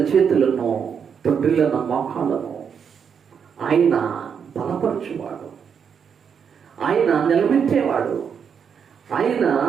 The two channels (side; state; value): left; quieter; 7.1 dB